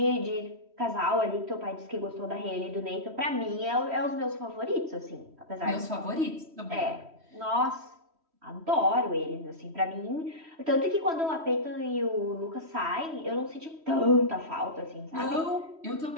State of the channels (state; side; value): late; left; 3.1 ms